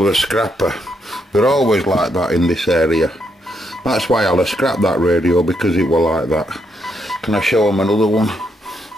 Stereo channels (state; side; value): normal; both; correlation 0.78